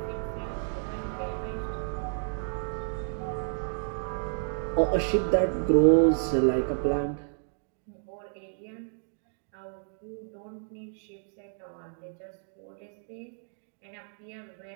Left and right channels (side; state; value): left; silent; digital silence